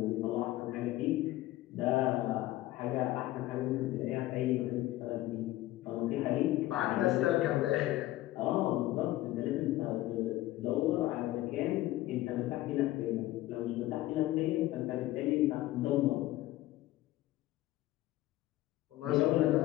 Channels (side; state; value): right; quieter; 16.2 dB